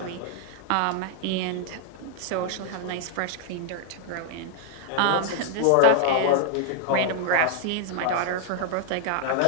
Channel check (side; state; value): both; different; correlation -0.01